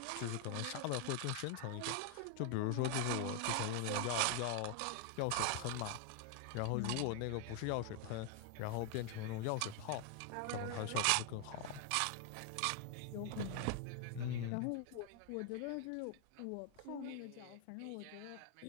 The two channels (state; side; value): different; both; correlation 0.00